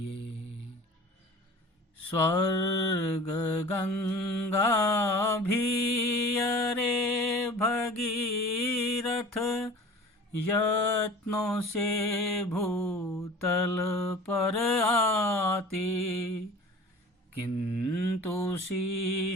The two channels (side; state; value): both; normal; correlation 0.42